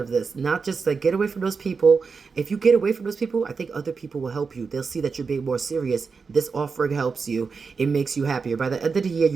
this. Not just like get away from those people. If you get away from those people, I think other people will help you. They'll see that you're being more serious. This offering helps you. It makes you happier. By the end of the year,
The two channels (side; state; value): left; quieter; 5.0 dB